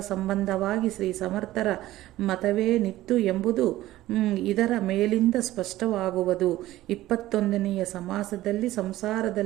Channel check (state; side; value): quieter; left; 15.6 dB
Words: ಸಂಬಂಧವಾಗಿ ಶ್ರೀ ಸಮರ್ಥರ ಮತವೇ ನಿತ್ತು ಎಂಬುದು ಇದರ ಮೇಲಿಂದ ಸ್ಪಷ್ಟವಾಗುವುದು. 21ನೆಯ ಸಮಾಸದಲ್ಲಿ